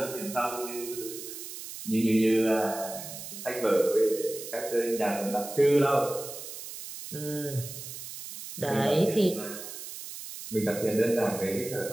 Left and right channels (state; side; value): noise; right; hiss, 10 dB below the sound